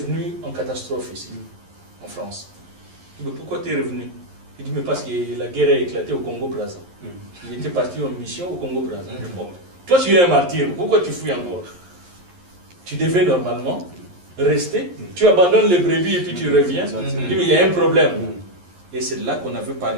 en catastrophe ici, en France. Je dis, mais pourquoi tu es revenu? Il dit, mais parce que la guerre a éclaté au Congo-Brazza. Il était parti en mission au Congo-Brazza. Bon, toi, tu es un martyr. Pourquoi tu fuis encore? Tu devais normalement rester. Tu abandonnes les brebis et puis tu reviens. Il dit, mais il y a un problème. Et c'est là qu'on avait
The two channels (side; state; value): left; late; 11 ms